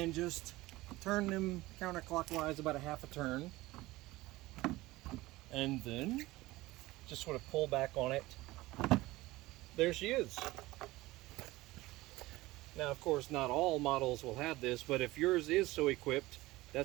just turn them counterclockwise about a half a turn, and then just sort of pull back on it. There she is. Now, of course, not all models will have this, but if yours is so equipped,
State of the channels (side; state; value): left; quieter; 19.0 dB